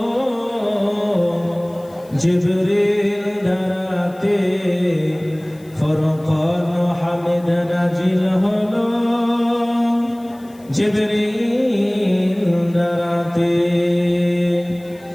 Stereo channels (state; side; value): noise; left; hiss, 28 dB below the sound